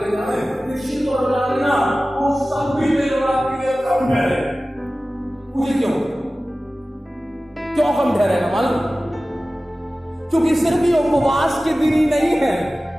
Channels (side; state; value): both; normal; correlation 0.96